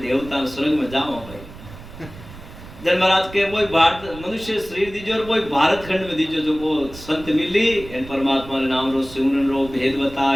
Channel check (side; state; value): right; noise; rumble, 16 dB below the sound